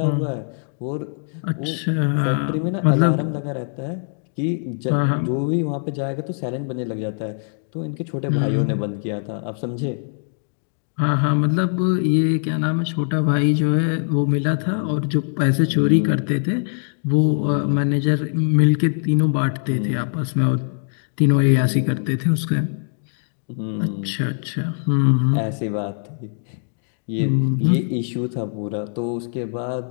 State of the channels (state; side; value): silent; right; digital silence